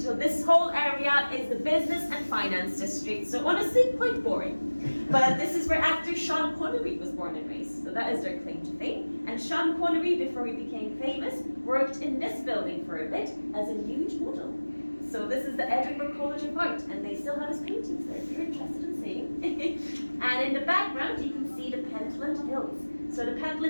this whole area is the business and finance district. So honestly, quite boring. But this is where actor Sean Connery was born and raised. So that is their claim to fame. And Sean Connery, before he became famous, worked in this building for a bit as a nude model. So this is the Edinburgh College of Art, and they still have his paintings there if you're interested in seeing. And in the background, you can see the Pentland Hills. So the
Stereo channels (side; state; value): both; inverted; correlation -1.00